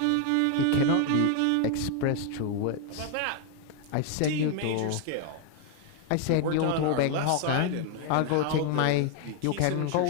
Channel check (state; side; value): different; both; correlation 0.00